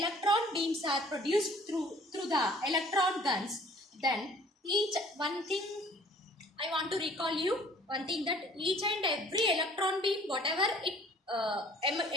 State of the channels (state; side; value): normal; both; correlation 0.53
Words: beams are produced through the electron guns, then one thing I want to recall you, one thing that each and every electron beam, whatever it